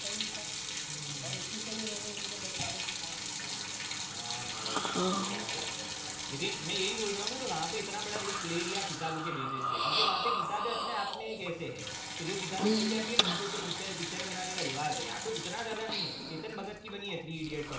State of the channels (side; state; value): both; identical; correlation 1.00